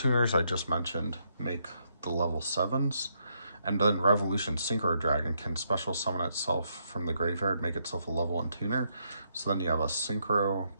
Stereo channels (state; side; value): inverted; both; correlation -0.77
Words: I just mentioned make the level 7s, and then Revolution Synchro Dragon can special summon itself from the graveyard, make itself a level 1 tuner. So then you have a Synchro